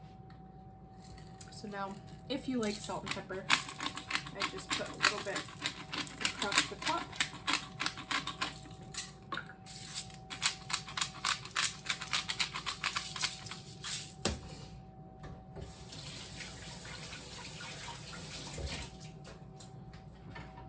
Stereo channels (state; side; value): identical; both; correlation 1.00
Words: So now, if you like salt and pepper, I just put a little bit across the top.